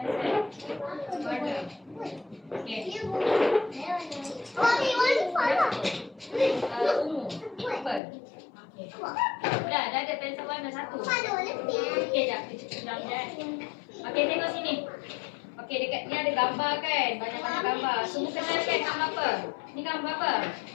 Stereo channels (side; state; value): right; drops out; at 8.0 s